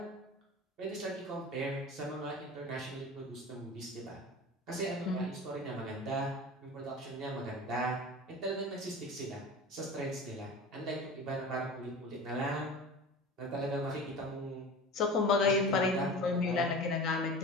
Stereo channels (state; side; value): normal; both; correlation 0.34